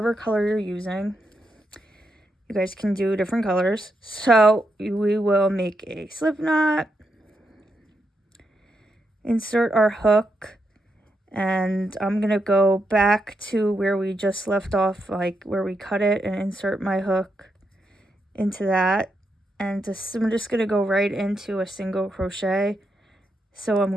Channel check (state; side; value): normal; both; correlation 0.82